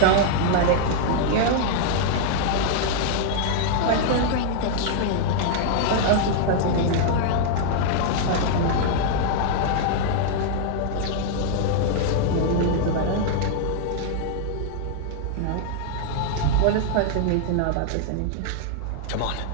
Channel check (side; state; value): both; different; correlation 0.00